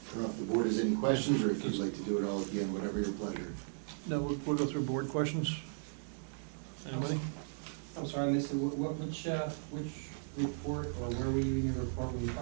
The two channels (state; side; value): silent; left; 54 dB below the other